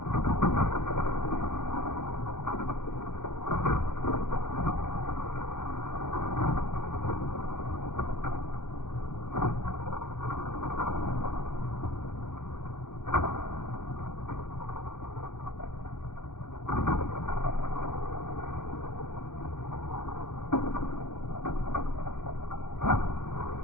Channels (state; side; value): late; right; 0.87 ms